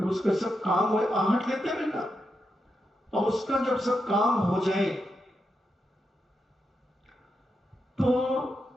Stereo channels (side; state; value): both; normal; correlation 0.85